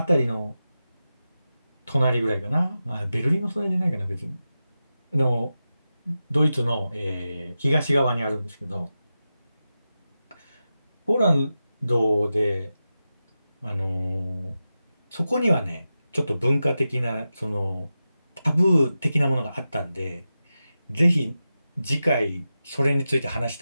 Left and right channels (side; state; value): both; inverted; correlation -0.92